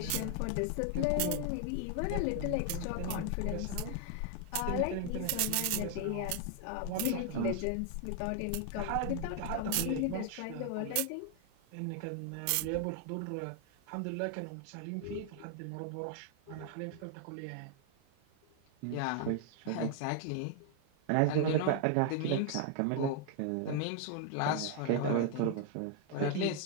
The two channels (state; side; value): different; both; correlation 0.00